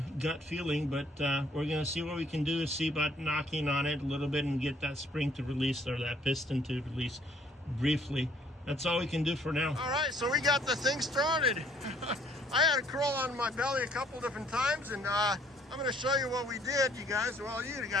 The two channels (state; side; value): normal; both; correlation 0.62